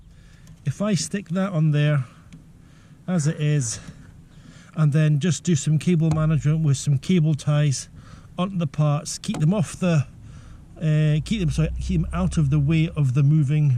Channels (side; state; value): both; identical; correlation 1.00